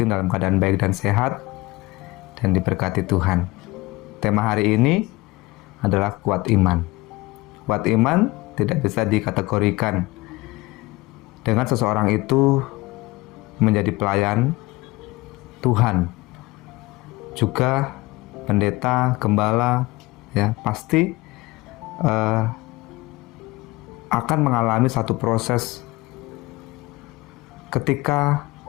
dalam keadaan baik dan sehat dan diberkati Tuhan. Tema hari ini adalah kuat iman. Kuat iman tidak bisa dikategorikan dengan seseorang itu menjadi pelayan Tuhan, juga pendeta, gembala, ya pasti akan mengalami satu proses ketika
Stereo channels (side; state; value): right; quieter; 21.1 dB